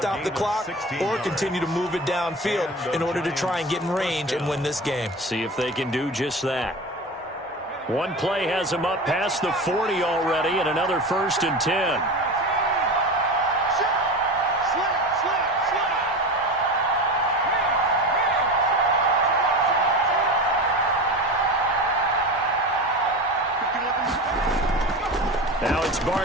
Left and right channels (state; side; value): normal; both; correlation 0.28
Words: the clock or continue to move it downfield in order to try and get in range and win this game. See if they can do just that. One play has them up past the 40 already, and another 1st and 10. Now it's